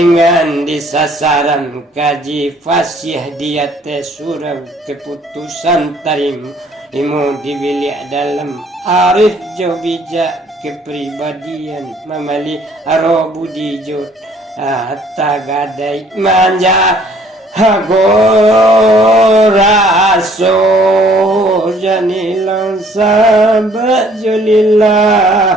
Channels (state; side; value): normal; both; correlation 0.59